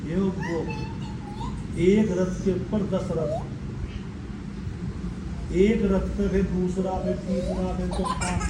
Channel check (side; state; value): both; identical; correlation 1.00